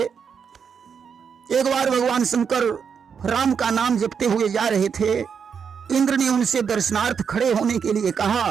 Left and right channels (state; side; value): quieter; left; 6.7 dB